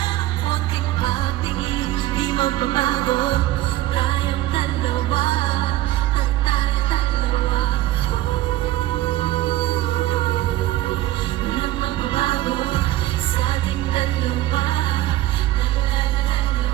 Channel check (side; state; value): left; quieter; 15.4 dB